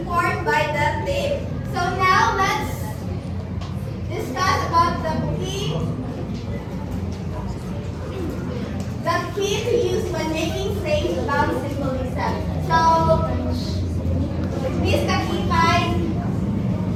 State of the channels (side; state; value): both; identical; correlation 1.00